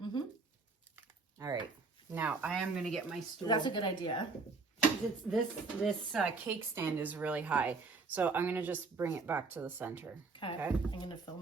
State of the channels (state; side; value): quieter; left; 4.1 dB